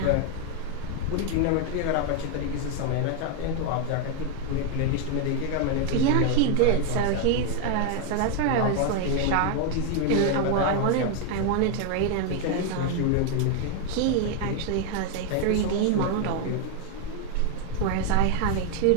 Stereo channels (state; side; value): different; both; correlation 0.01